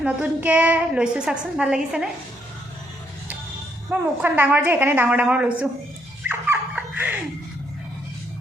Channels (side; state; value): both; normal; correlation 0.73